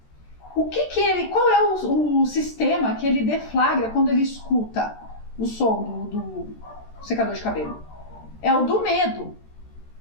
qual é o sistema que ele deflagra quando ele escuta o som do secador de cabelo? É o do medo.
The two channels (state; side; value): late; right; 13 ms